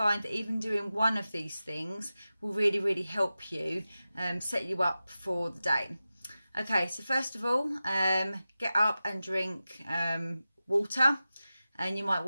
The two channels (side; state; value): both; inverted; correlation -0.94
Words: that even doing one of these things will really help you set you up for the day. Okay, so first of all, get up and drink water, and you might